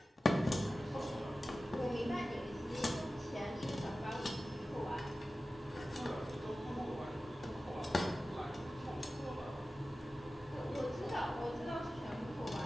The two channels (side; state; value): both; normal; correlation 0.95